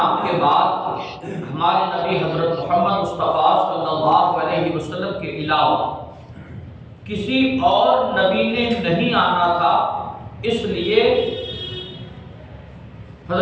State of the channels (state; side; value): identical; both; correlation 1.00